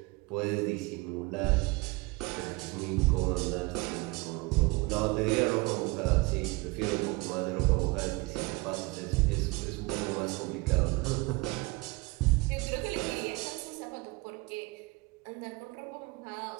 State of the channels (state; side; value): quieter; left; 24.6 dB